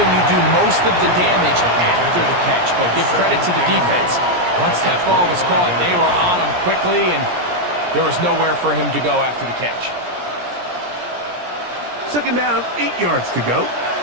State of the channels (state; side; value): late; left; 17 ms